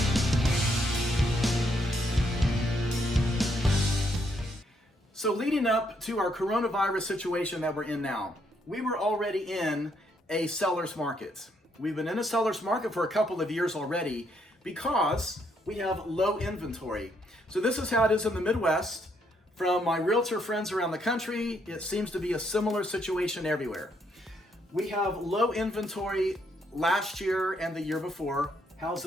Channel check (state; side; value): normal; both; correlation 0.73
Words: So leading up to our coronavirus situation that we're in now, we were already in a seller's market. We've been in a seller's market for a couple of years already because we have low inventory. So this is how it is in the Midwest. From my realtor friends around the country, it seems to be a similar situation everywhere. We have low inventory last year and the year before.